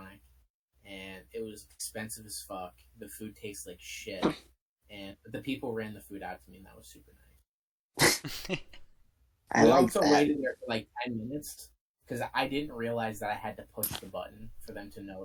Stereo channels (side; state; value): both; identical; correlation 1.00